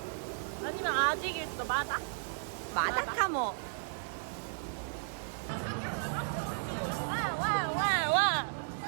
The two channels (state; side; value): silent; left; digital silence